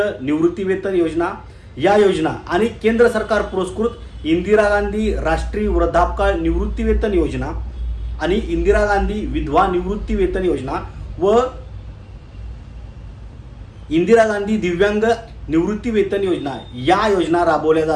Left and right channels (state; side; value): identical; both; correlation 1.00